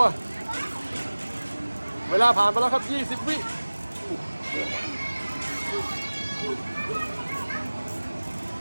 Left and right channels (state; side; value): inverted; both; correlation -1.00